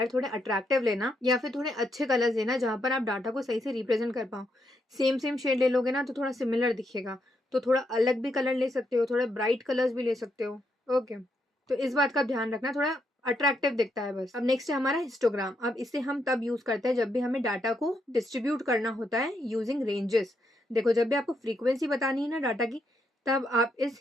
थोड़े अट्रैक्टिव लेना, या फिर थोड़े अच्छे कलर्स लेना जहां पर आप डाटा को सही से रिप्रेजेंट कर पाओ। सेम सेम शेड ले लोगे ना तो थोड़ा सिमिलर दिखेगा, तो थोड़ा अलग भी कलर ले सकते हो, थोड़े ब्राइट कलर्स भी ले सकते हो, ओके। तो इस बात का ध्यान रखना, थोड़ा अट्रैक्टिव दिखता है बस। अब नेक्स्ट है हमारा हिस्टोग्राम। अब इसे हम तब यूज करते हैं जब भी हमें डाटा को डिस्ट्रीब्यूट करना होता है यूजिंग रेंजेस। देखो, जब भी आपको फ्रीक्वेंसी बतानी है ना डाटा की, तब आप इस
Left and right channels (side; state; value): both; normal; correlation 0.79